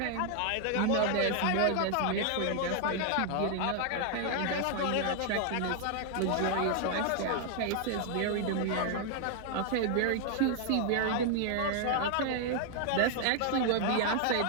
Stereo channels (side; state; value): both; different; correlation 0.00